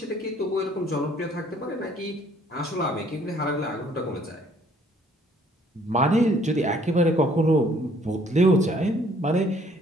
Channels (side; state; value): both; normal; correlation 0.61